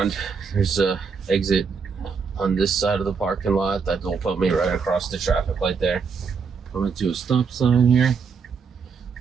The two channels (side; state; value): left; quieter; 5.5 dB